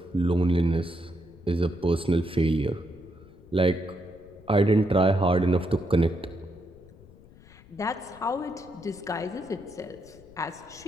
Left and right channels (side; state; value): left; noise; rumble, 23 dB below the sound